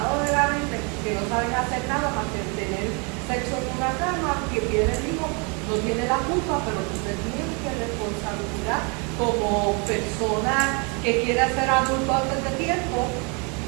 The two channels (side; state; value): left; quieter; 33.2 dB